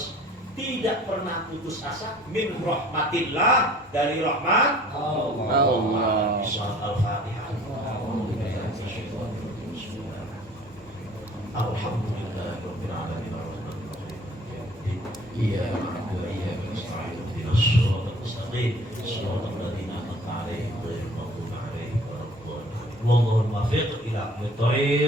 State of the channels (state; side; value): normal; both; correlation 0.51